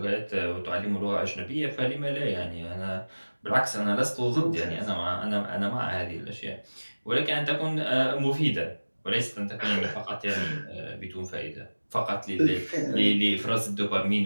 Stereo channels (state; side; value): inverted; both; correlation -1.00